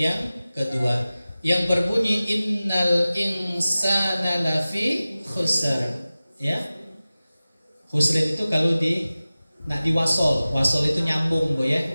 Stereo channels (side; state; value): both; inverted; correlation -0.97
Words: kedua yang berbunyi innal insana lafi khusr, ya. Khusr itu kalau nak diwasol itu nyambung, Bu ya.